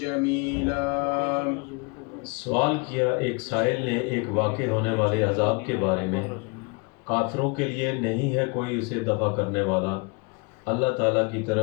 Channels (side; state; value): right; quieter; 30.8 dB